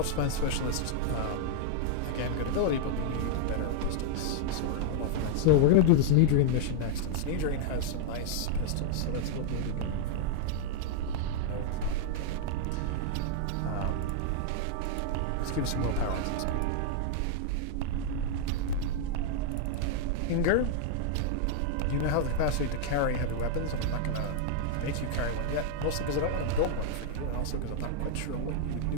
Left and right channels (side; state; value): both; different; correlation 0.00